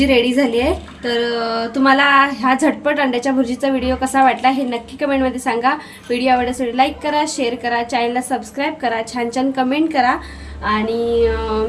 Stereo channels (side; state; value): both; identical; correlation 1.00